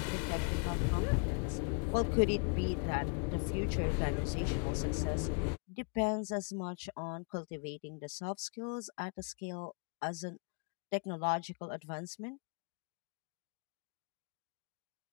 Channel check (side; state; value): right; quieter; 39.7 dB